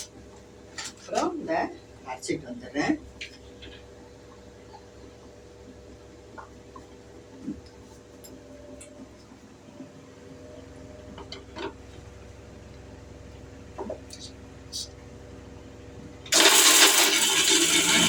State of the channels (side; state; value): both; identical; correlation 1.00